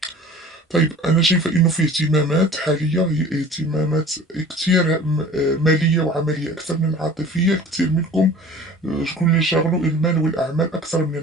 طيب أنا شايفة إنه في اهتمامات حالية هي اهتمامات كتير مالية وعملية أكثر من العاطفية. كتير منكم شكون اللي شاغلو المال والأعمال أكثر من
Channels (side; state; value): both; normal; correlation 0.43